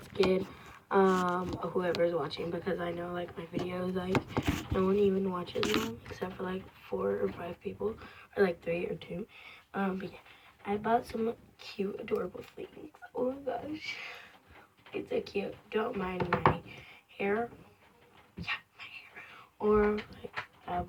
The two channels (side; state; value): both; identical; correlation 1.00